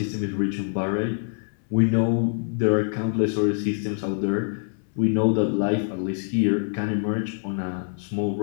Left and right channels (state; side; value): silent; right; 58 dB below the other